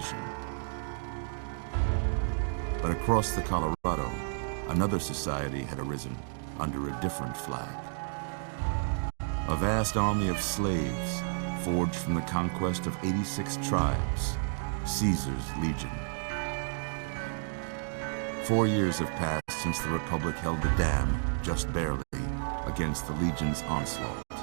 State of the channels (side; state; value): left; silent; digital silence